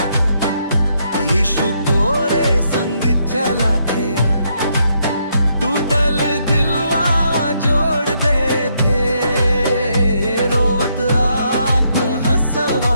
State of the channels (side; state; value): both; inverted; correlation -0.76